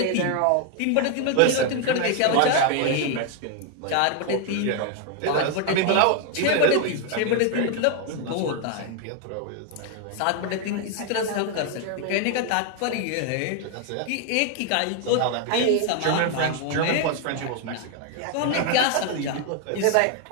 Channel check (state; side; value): different; both; correlation 0.00